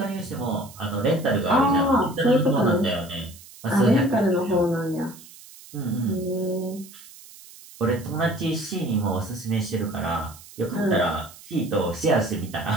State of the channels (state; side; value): noise; right; hiss, 20 dB below the sound